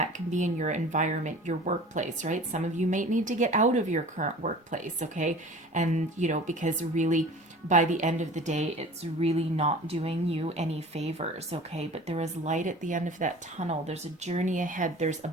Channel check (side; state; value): both; normal; correlation 0.41